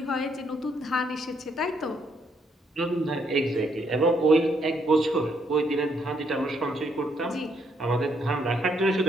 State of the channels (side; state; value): both; normal; correlation 0.72